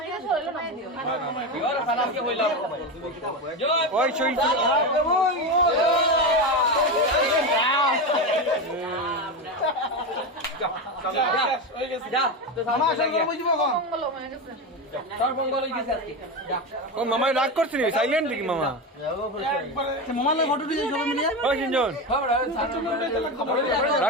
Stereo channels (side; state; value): both; normal; correlation 0.17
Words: ওই সই যা তো মামা আসলে বুঝিব কোন? মঙ্গল হয়ে গেছে। তোর মঙ্গল হই গেছে আজকে যা ও মামা রাগ করছিস সাইলেন্ট কি মামা? মামা লাগে ফটো দিয়েছ সবাই মিলে। ওই সিনজন খবর